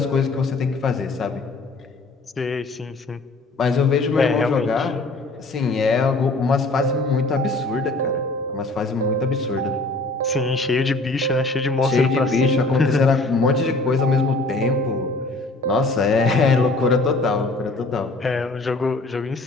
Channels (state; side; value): quieter; right; 3.1 dB